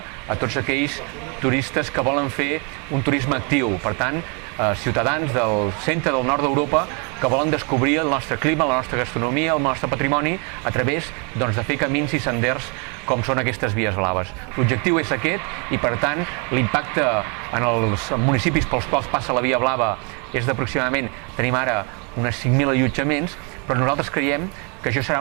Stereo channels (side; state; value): left; quieter; 35.5 dB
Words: a tots aquells turistes que volen fer un turisme actiu. Per tant, ciutadans del centre del nord d'Europa que volen descobrir el nostre clima, la nostra gastronomia, el nostre patrimoni a través de fer camins i senders com són aquestes vies blaves. L'objectiu és aquest i, per tant, l'impacte en els municipis pels quals passa la via blava és d'aproximadament, tenim ara unes 5.000 allotjaments, però nosaltres creiem que això